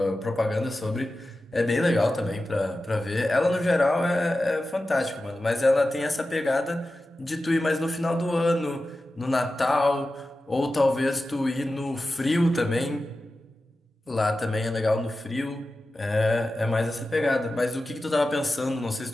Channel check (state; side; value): normal; both; correlation 0.93